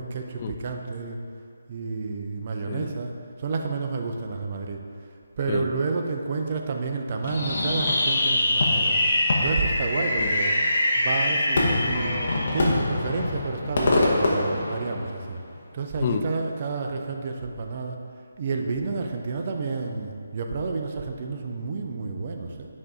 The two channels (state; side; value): inverted; both; correlation -0.80